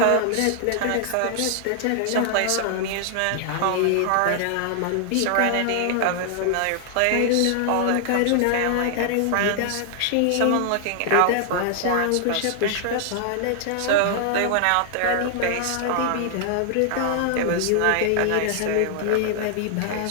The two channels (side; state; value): both; different; correlation 0.00